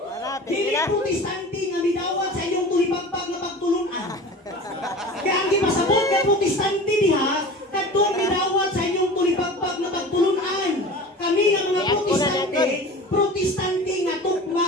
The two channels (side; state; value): both; normal; correlation 0.36